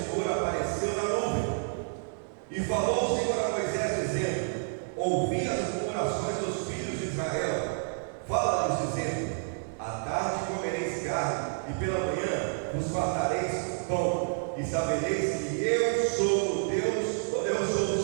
apareceu na nuvem. E falou o Senhor a Moisés, dizendo: ouvi as murmurações dos filhos de Israel, fala-lhes dizendo: à tarde comereis carne, e pela manhã vos fartareis pão, e sabereis que eu sou o Deus, eu sou o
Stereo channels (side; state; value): left; silent; 58 dB below the other